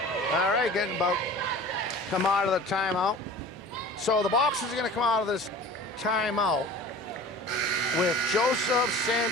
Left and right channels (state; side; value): normal; both; correlation 0.41